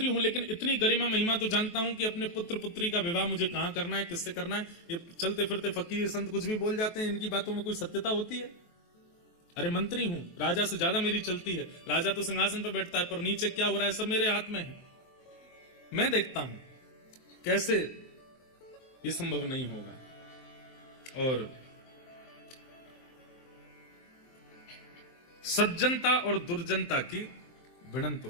हूं, लेकिन इतनी गरिमा महिमा तो जानता हूं कि अपने पुत्र पुत्री का विवाह मुझे कहां करना है, किससे करना है। ये चलते फिरते फकीर संत कुछ भी बोल जाते हैं, इनकी बातों में कोई सत्यता होती है? अरे मंत्री हूं, राजा से ज्यादा मेरी चलती है। राजा तो सिंहासन पर बैठता है, पर नीचे क्या हो रहा है सब मेरे हाथ में है, मैं देखता हूं। कैसे? ये संभव नहीं होगा। और सज्जनता और दुर्जनता की भिड़ंत तो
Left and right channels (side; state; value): right; late; 23 ms